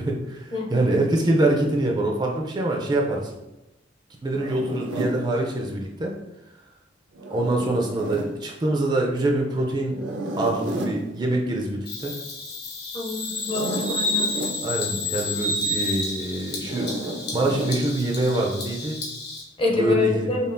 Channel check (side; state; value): both; normal; correlation 0.60